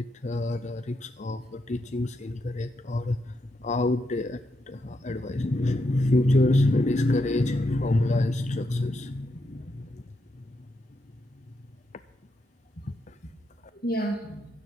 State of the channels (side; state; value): both; normal; correlation 0.82